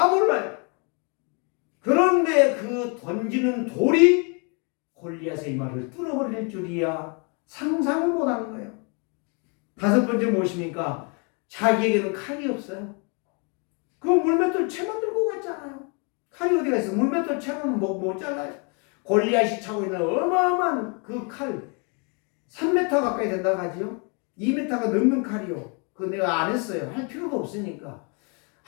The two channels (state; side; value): quieter; right; 35.3 dB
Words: 몰라요. 그런데 그 던지는 돌이 골리앗의 이마를 뚫어버릴 줄이야 상상을 못하는 거예요. 5번째 무엇입니까? 자기에게는 칼이 없어요. 그 물맷돌 채만 들고 갔잖아요. 칼이 어디가 있어? 물맷돌 채는 못 잘라요. 골리앗이 차고 있는 어마어마한 그 칼 3m 가까이 된다고 하지요. 2m가 넘는 칼이요. 그거 내가 안 했어요. 할 필요도 없으니까.